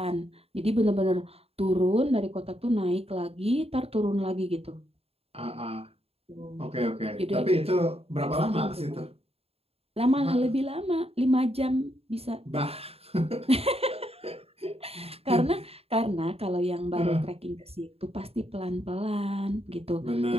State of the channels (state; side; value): late; left; 0.29 ms